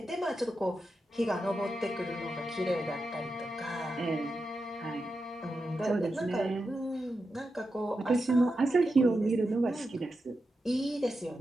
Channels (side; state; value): both; normal; correlation 0.89